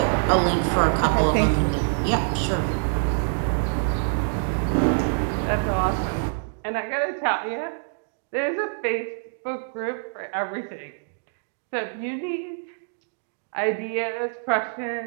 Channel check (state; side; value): silent; left; digital silence